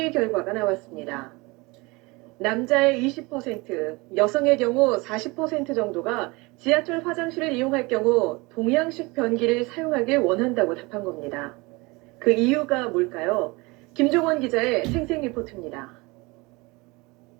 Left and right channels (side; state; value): left; quieter; 24.8 dB